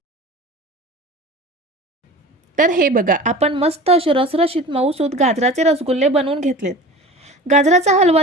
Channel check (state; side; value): normal; both; correlation 0.37